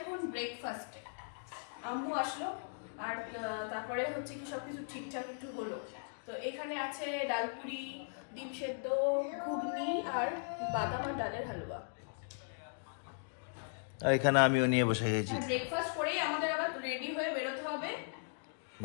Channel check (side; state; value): right; silent; digital silence